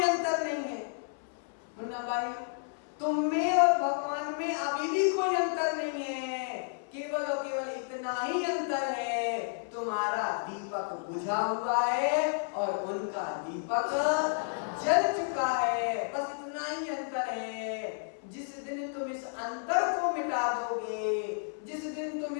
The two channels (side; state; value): right; silent; 57 dB below the other